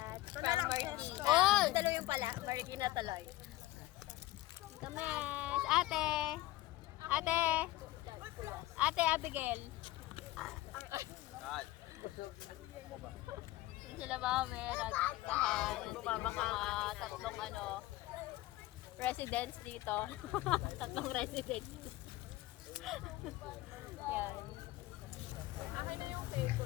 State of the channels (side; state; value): right; quieter; 17.2 dB